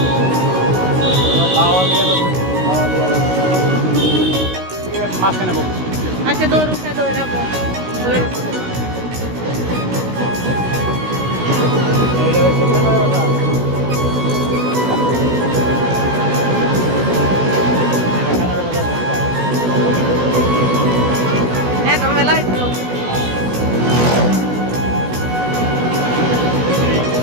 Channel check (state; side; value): late; left; 16 ms